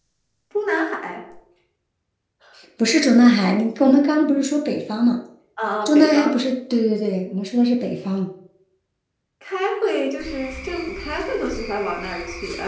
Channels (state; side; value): identical; both; correlation 1.00